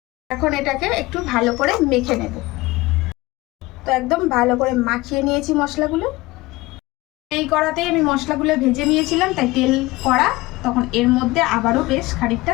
এখন এটাকে একটু ভালো করে মেখে নেব। তো একদম ভালো করে মাখিয়ে নিয়েছি মশলাগুলো। এই কড়াতেই আমি মশলাগুলো ভেজে নিয়েছিলাম, তাই তেল কড়া, তখন এর মধ্যে আবারও বেশ খানিকটা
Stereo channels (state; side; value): quieter; right; 20.5 dB